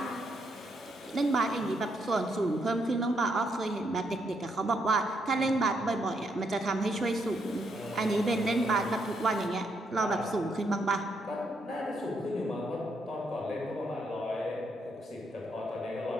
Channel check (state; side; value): normal; both; correlation 0.76